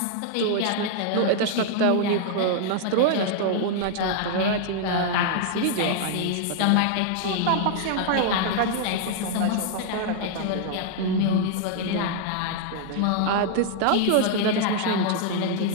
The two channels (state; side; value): different; both; correlation -0.01